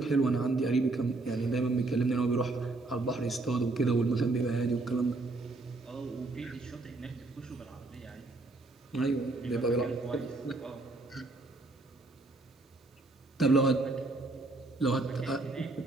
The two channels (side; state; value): left; quieter; 3.1 dB